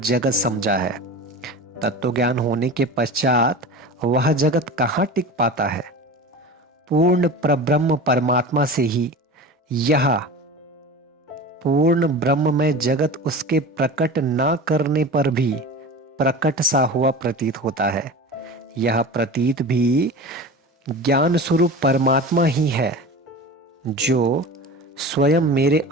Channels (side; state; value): both; normal; correlation 0.32